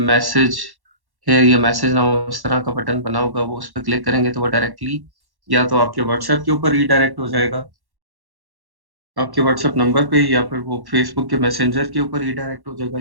मैसेज है या मैसेज नाउ इस तरह का बटन बना होगा, वो उस पर क्लिक करेंगे तो वो डायरेक्टली या तो आपके व्हाट्सएप के ऊपर रीडायरेक्ट हो जाएगा, आपके व्हाट्सएप नंबर पे, या फिर वो फेसबुक के मैसेंजर के ऊपर रीडायरेक्ट हो जाएगा,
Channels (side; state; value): left; late; 1.1 ms